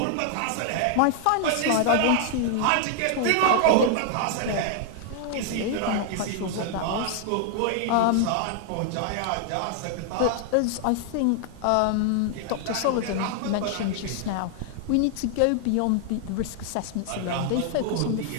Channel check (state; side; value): different; both; correlation 0.00